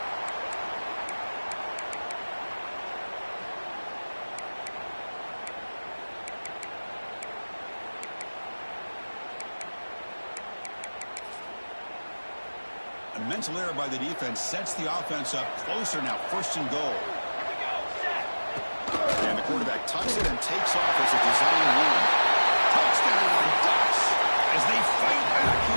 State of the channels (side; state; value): both; inverted; correlation -1.00